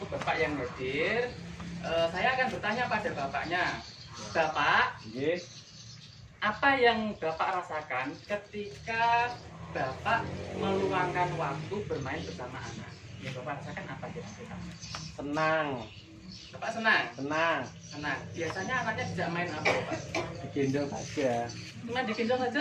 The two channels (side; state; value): both; identical; correlation 1.00